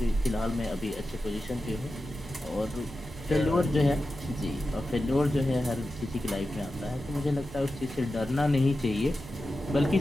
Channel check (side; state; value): right; noise; hum, 18 dB below the sound